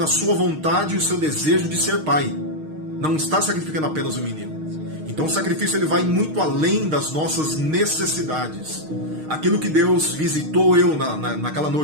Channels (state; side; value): late; left; 6.5 ms